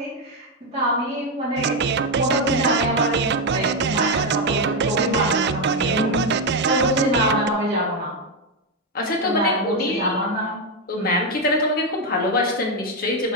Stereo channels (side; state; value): both; normal; correlation 0.05